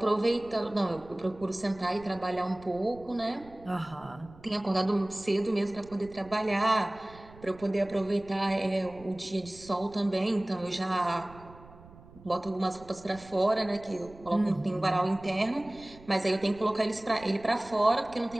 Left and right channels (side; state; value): right; noise; rumble, 21 dB below the sound